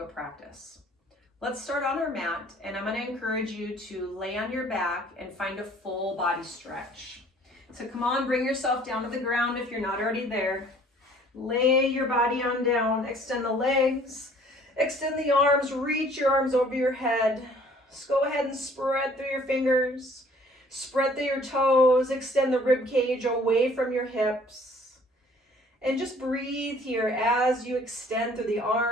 practice. Let's start on our mat, and I'm going to encourage you to lay on your back and find a full body stretch. So come on, bring yourself down to the ground if you're not already there. Lay your body on down, extend the legs, extend the arms, reach your arms over your head. Just go ahead and spread through your fingers, spread through your toes, extend the rib cage away from your hips. And just breathe here as you extend through the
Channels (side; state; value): both; normal; correlation 0.55